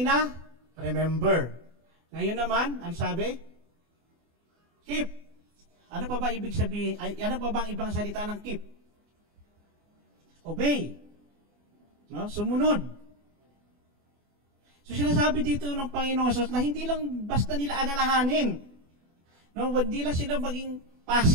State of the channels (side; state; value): left; late; 24 ms